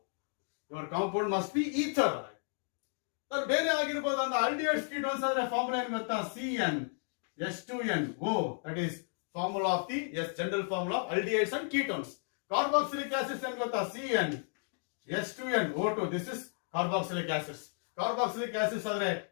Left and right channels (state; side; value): silent; right; 55 dB below the other